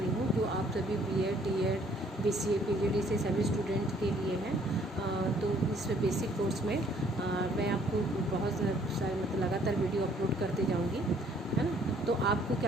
हूँ, जो आप सभी BEd, DEd, BCA, PGD से सभी स्टूडेंट के लिए हैं। तो इस बेसिक कोर्स में मैं आपको बहुत सारे लगातार वीडियो अपलोड करते जाऊँगी, है ना। तो आपको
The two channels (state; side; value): normal; both; correlation 0.61